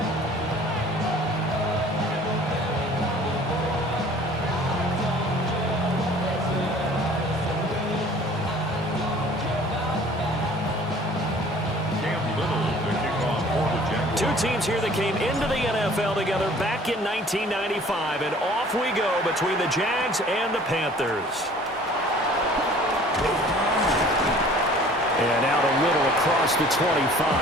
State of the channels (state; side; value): normal; both; correlation 0.50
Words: Two teams here that came into the NFL together back in 1995, and off we go between the Jags and the Panthers. And out a little across the 25